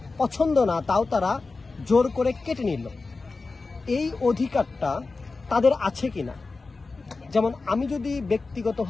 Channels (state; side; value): quieter; right; 3.9 dB